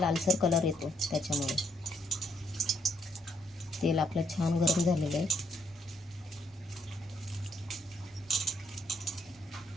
कलर येतो त्याच्यामुळे। तेल आपलं छान गरम झालेलं आहे।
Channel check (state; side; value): normal; both; correlation 0.72